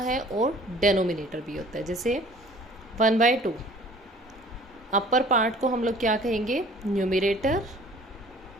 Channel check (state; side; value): normal; both; correlation 0.51